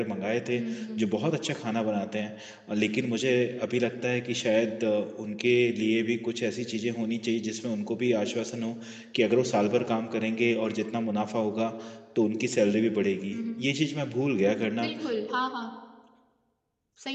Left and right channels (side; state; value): both; identical; correlation 1.00